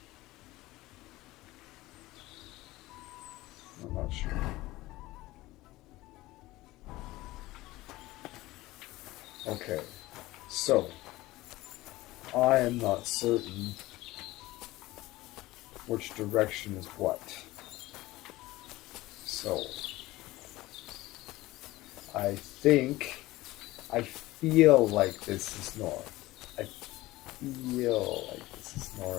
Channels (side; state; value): right; quieter; 18.4 dB